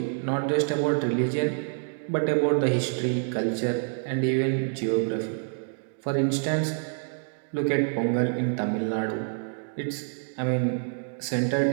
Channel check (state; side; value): silent; left; digital silence